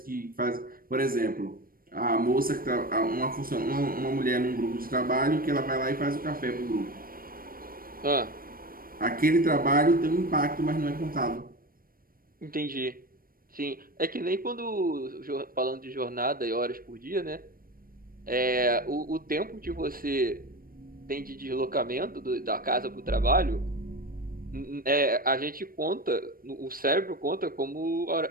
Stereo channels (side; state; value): left; late; 0.42 ms